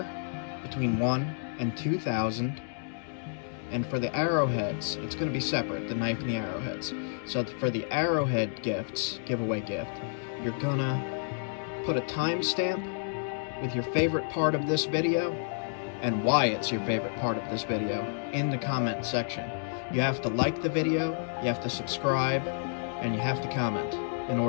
between 1 and 2,000. And for the arrowheads, it's gonna be separate, the knife and the arrowheads. So for the arrowhead giveaway gift, you're gonna put a timestamp with your favorite part of this video and why it's your favorite part of this video in the comment section. You have to like the video, you have to subscribe, and you have to comment in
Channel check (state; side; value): silent; right; digital silence